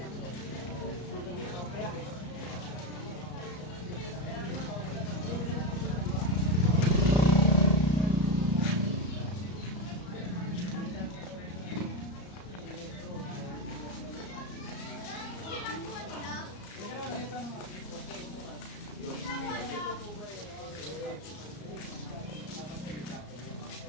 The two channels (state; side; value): late; right; 34 ms